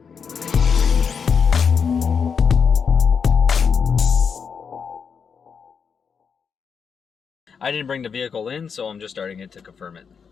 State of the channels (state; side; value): quieter; right; 6.3 dB